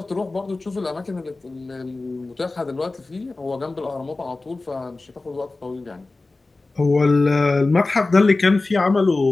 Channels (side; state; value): right; quieter; 3.3 dB